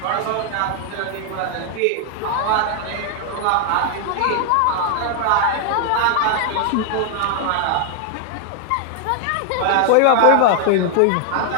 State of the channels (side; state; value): both; different; correlation 0.00